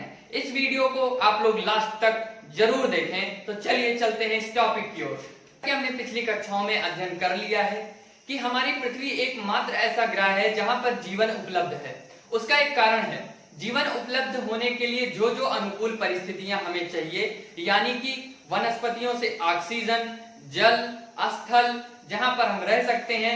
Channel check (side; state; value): both; identical; correlation 1.00